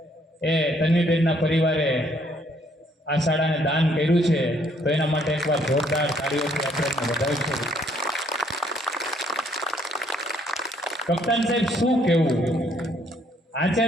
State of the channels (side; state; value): both; normal; correlation 0.67